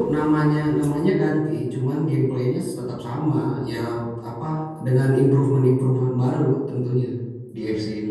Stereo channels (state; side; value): identical; both; correlation 1.00